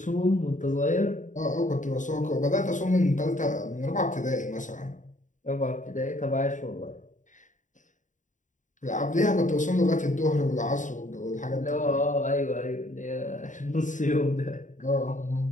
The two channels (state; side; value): late; right; 0.36 ms